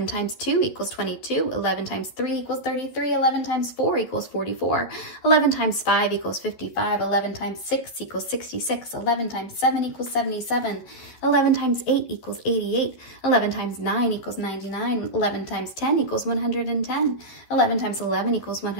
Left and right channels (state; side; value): late; right; 12 ms